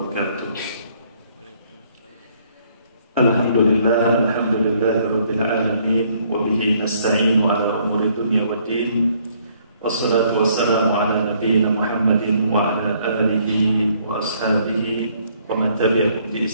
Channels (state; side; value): inverted; both; correlation -0.65